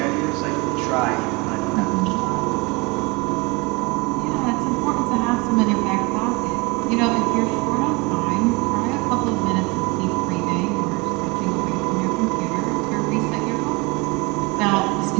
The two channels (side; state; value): left; quieter; 26.2 dB